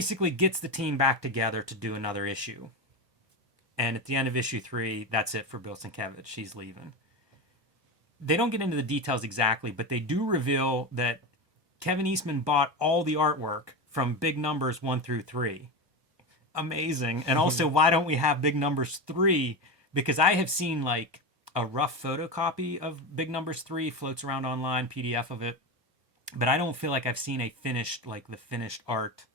gets the team back together to do another issue. And at the end of issue 3, that's it for Bill Sienkiewicz. She's leaving. They don't get into the details exactly, but they do reveal that Kevin Eastman bought all the artwork from big numbers 1 through 3. Amazing. And also, why don't we have big numbers 3? Because I have seen like a rough photocopy of big numbers 3 floats around online, PDF of it. But I don't feel like I've seen a finished, like the finished art,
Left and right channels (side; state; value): left; late; 1.4 ms